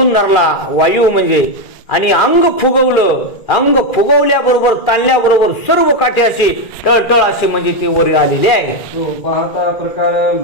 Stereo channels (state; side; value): late; right; 2.4 ms